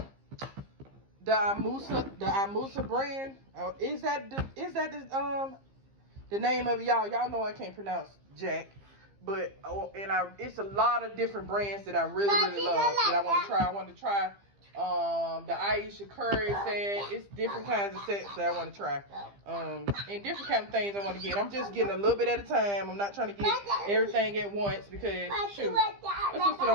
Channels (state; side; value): late; left; 15 ms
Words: Amusa brand. Is that the name of it, y'all? Y'all know I can't pronounce Jack. But it's a lot of different brands that I really love that I want to try. I want to try The Aisha Curry set. It's different kinds of sets that I want to try. And different kind of things I want to get. I'm just getting a little bit at a time. I'm not trying to get everything at once because, shoot, my sister